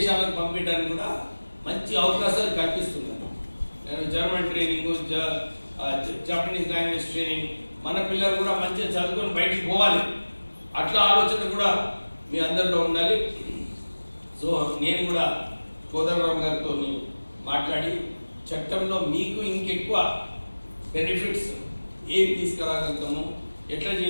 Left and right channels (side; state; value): both; inverted; correlation -1.00